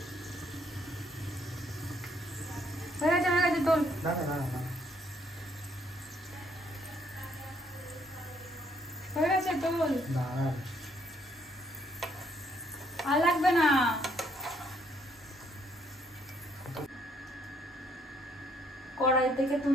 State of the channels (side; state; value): both; normal; correlation 0.69